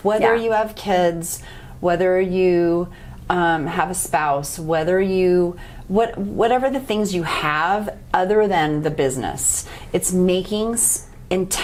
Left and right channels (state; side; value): identical; both; correlation 1.00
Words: Whether you have kids, whether you have a spouse, whatever the things you have other than the business. It's making